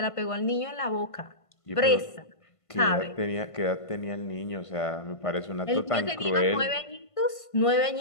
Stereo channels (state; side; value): late; right; 1.5 ms